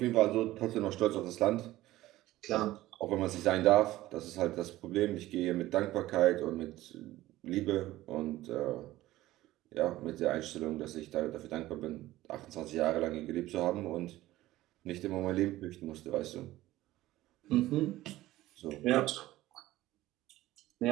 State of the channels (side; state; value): left; quieter; 16.2 dB